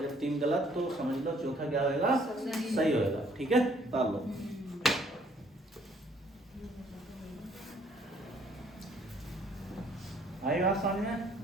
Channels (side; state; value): both; normal; correlation 0.63